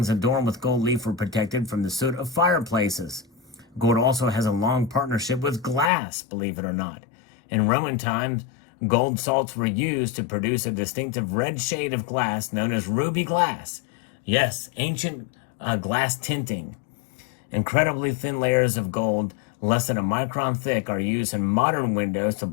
adorned with gold leaf were protected from the soot of fireplaces. Gold also has a long partnership with glass, believe it or not. In Roman times, gold salts were used to produce a distinctive red shade of glass known as ruby glass. Yes, ancient glass tinting. Incredibly thin layers of gold, less than a micron thick, are used in modern windows to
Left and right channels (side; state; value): right; drops out; at 5.9 s